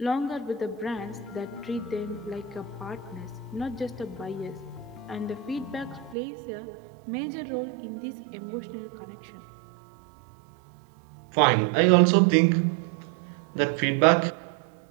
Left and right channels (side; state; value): left; drops out; at 6.2 s